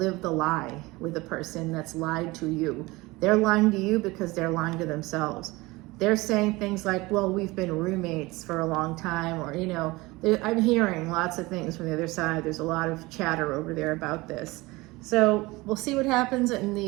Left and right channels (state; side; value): quieter; left; 21.8 dB